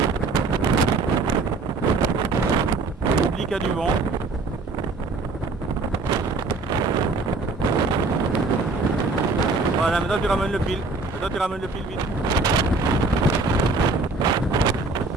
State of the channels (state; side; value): quieter; left; 3.6 dB